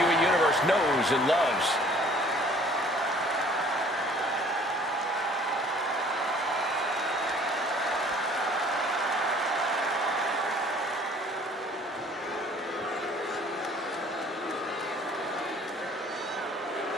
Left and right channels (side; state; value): both; normal; correlation 0.54